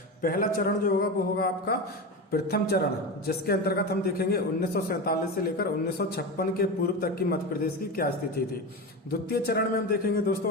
पहला चरण जो होगा वो होगा आपका प्रथम चरण, जिसके अंतर्गत हम देखेंगे 1947 से लेकर 1956 के पूर्व तक की मध्य प्रदेश की क्या स्थिति थी। द्वितीय चरण में हम देखेंगे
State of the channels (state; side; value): normal; both; correlation 0.22